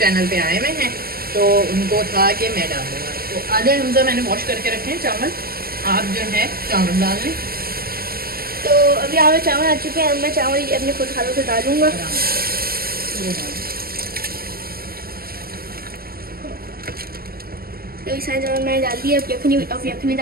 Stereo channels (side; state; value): left; late; 0.44 ms